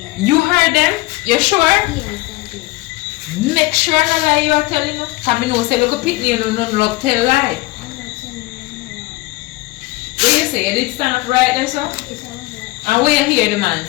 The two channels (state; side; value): quieter; right; 20.9 dB